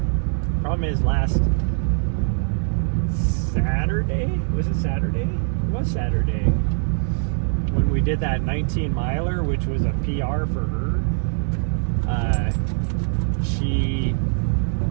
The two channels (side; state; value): left; silent; digital silence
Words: Problem is, last Saturday, was it Saturday? It was Saturday. When we did that 19 miler, which was a PR for her, she